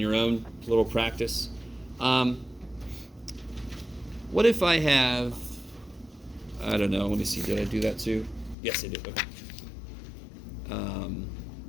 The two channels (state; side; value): drops out; right; at 8.6 s